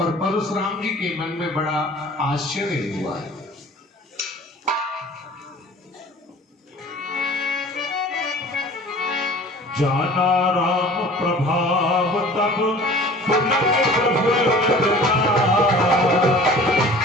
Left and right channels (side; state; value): both; normal; correlation 0.45